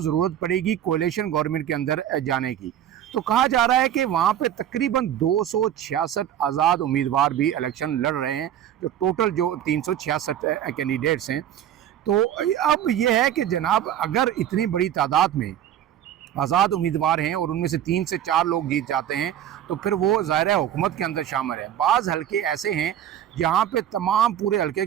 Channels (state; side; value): quieter; left; 10.7 dB